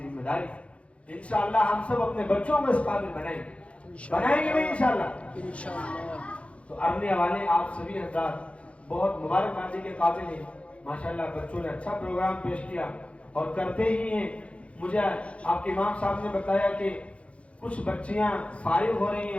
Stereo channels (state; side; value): late; right; 0.062 ms